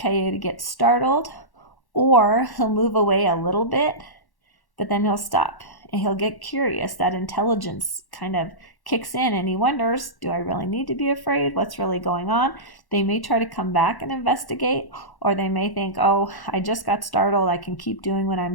gets startled, or he'll move away a little bit, but then he'll stop and he'll get curious. That intelligence kind of kicks in and he wonders, do I really need to be afraid? What's really going on? They may try to come back and investigate, or they may think, oh, I just got startled, I can keep doing what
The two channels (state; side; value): late; right; 1.1 ms